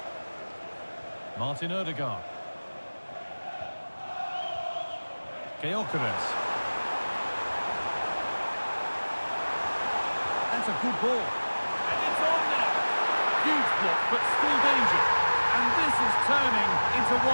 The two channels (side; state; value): both; inverted; correlation -1.00